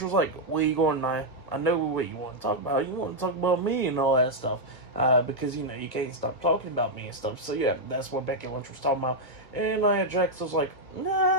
was like, where you going, Nia? I know what you want to talk about. You want to talk about me and all that stuff. Because, you can't stop talking about me and stuff. So, yeah, that's what Becky Lynch was talking about. And Nia Jax was like,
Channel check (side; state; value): right; late; 1.6 ms